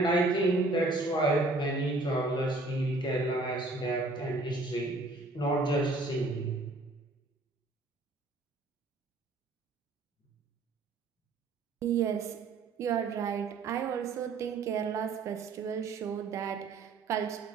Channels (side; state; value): left; quieter; 3.2 dB